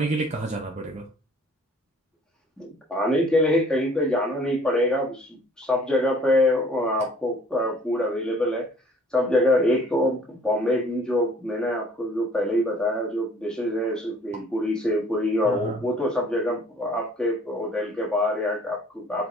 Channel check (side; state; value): both; normal; correlation 0.54